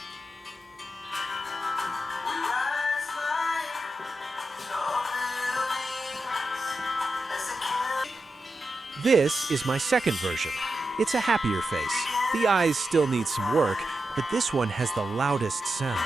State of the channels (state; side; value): normal; both; correlation 0.89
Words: This is my second version. It's a happier face. The eyes still need some work, but this one has the loudest